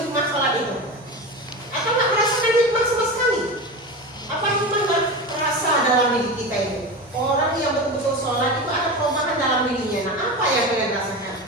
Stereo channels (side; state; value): both; normal; correlation 0.25